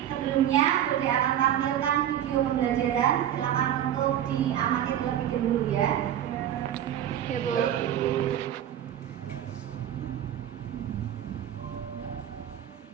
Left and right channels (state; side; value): quieter; left; 10.9 dB